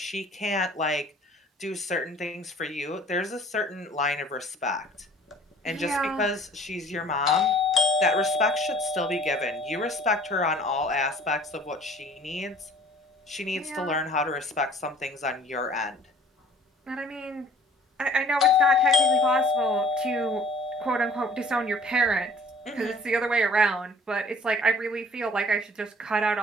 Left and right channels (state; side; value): normal; both; correlation 0.52